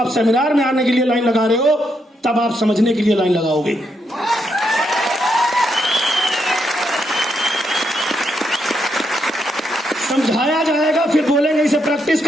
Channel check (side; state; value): both; normal; correlation 0.79